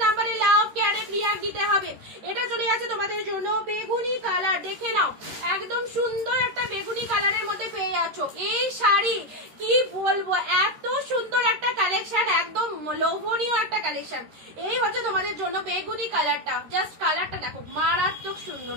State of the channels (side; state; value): left; late; 13 ms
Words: নাম্বারে লাভ কেয়ারে রিয়াক্ট দিতে হবে। এটা চলে যাচ্ছে তোমাদের জন্য বেগুনি কালার, দেখে নাও একদম সুন্দর একটা বেগুনি কালারের মধ্যে পেয়ে যাচ্ছ এই শাড়ি। কি বলবো, এত সুন্দর একটা কালেকশন, একদম লোভনীয় একটা কালেকশন। এই হচ্ছে তোমাদের জন্য বেগুনি কালারটা, জাস্ট কালারটা দেখো মারাত্মক সুন্দর,